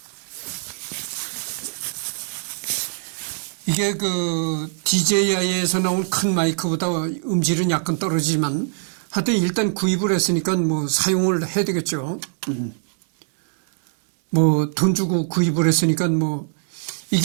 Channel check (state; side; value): silent; left; digital silence